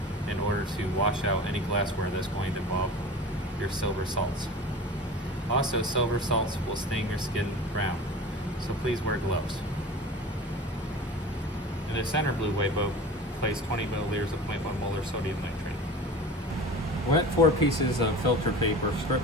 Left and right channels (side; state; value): both; normal; correlation 0.36